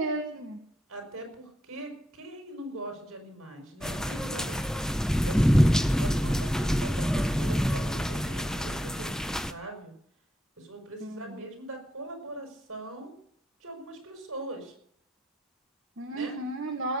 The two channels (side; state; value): both; normal; correlation 0.84